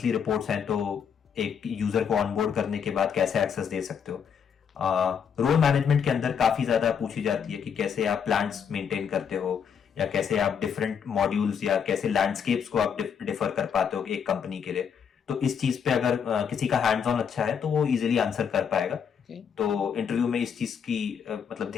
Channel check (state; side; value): quieter; right; 7.3 dB